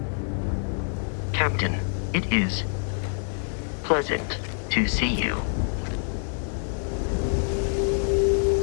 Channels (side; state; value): right; silent; 61 dB below the other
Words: Captain, it is pleasant to see you.